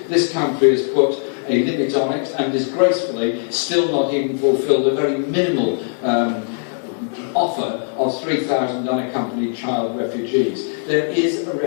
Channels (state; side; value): silent; right; digital silence